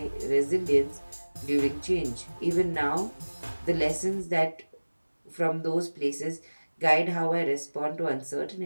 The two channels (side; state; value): both; inverted; correlation -1.00